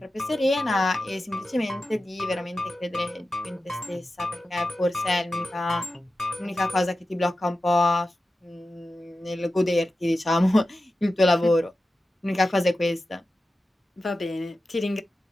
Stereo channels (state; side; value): normal; both; correlation 0.93